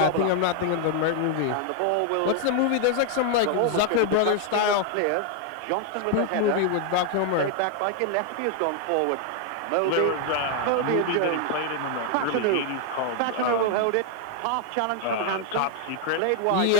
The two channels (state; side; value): different; both; correlation 0.00